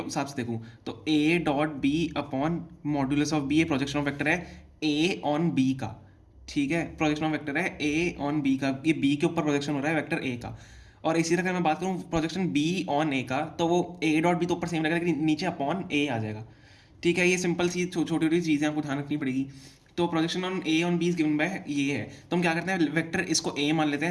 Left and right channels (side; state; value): both; identical; correlation 1.00